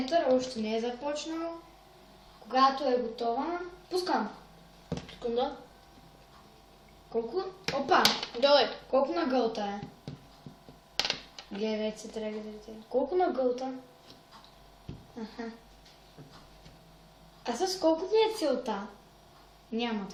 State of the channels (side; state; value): both; identical; correlation 1.00